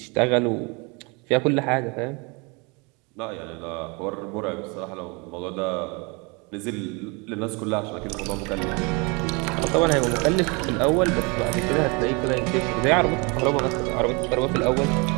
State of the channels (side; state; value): left; quieter; 29.6 dB